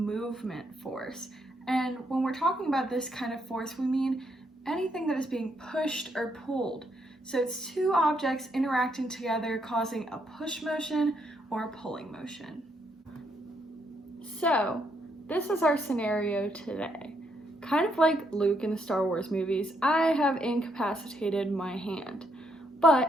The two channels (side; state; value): both; normal; correlation 0.75